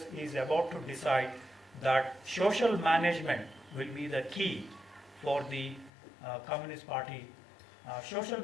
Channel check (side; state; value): right; drops out; at 5.9 s